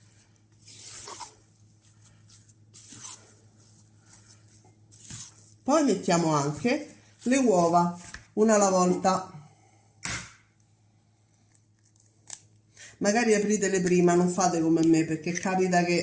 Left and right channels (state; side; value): identical; both; correlation 1.00